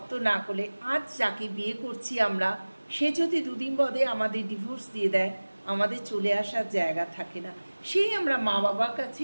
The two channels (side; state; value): both; inverted; correlation -1.00